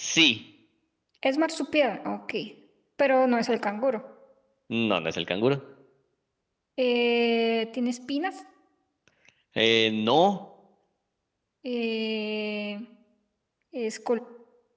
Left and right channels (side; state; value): both; identical; correlation 1.00